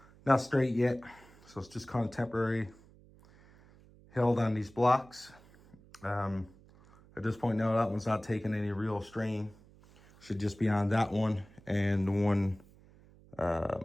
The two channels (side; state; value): right; noise; hum, 25 dB below the sound